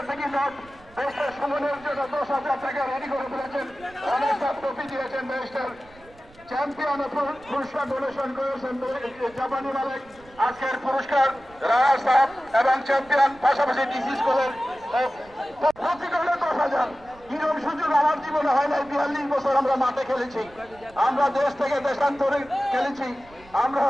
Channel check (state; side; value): noise; right; rumble, 25 dB below the sound